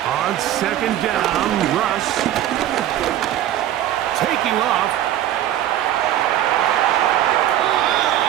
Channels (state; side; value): quieter; left; 12.3 dB